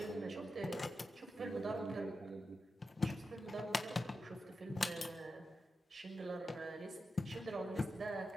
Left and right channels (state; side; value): normal; both; correlation 0.89